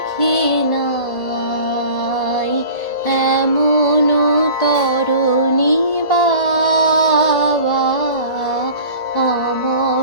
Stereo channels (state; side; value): late; right; 1.8 ms